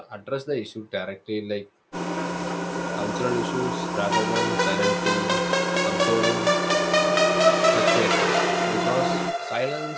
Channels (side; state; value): both; identical; correlation 1.00